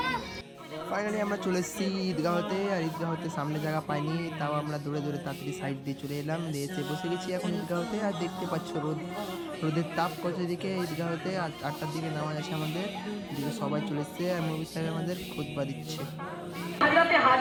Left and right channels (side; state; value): both; identical; correlation 1.00